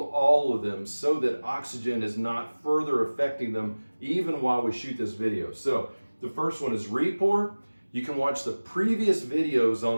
all of them so that oxygen is not further affecting them even while we shoot this video. So the first one is re-pour. You can watch the previous videos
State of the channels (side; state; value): both; inverted; correlation -1.00